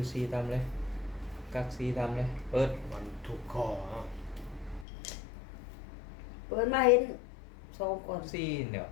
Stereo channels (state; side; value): drops out; right; at 4.9 s